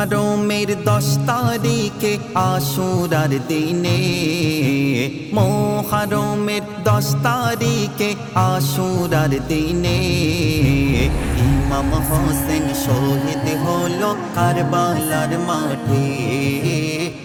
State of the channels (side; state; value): both; identical; correlation 1.00